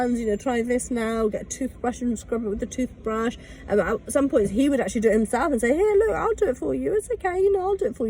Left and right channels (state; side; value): identical; both; correlation 1.00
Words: you know, try this now, get a toothbrush and scrub it with the toothbrush. And at some points he would actually do it himself and say, here, look, I'll do it for you, it's okay, you know, I'll do it for